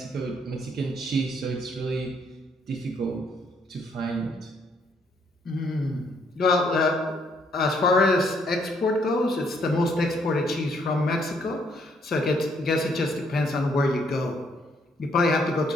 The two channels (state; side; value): normal; both; correlation 0.69